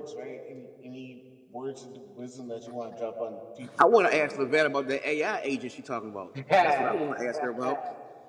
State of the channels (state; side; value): identical; both; correlation 1.00